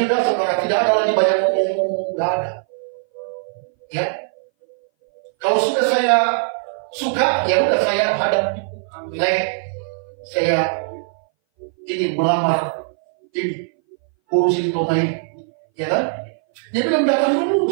saudara. Tidak ada lagi banyak ngomong-ngomong, tidak ada. Ya, kalau sudah saya suka, ya udah saya hadap. Saya ingin melamar ini, urusin Toma ini, ya kan? Dia bilang datang dulu,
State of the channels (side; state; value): left; silent; 61 dB below the other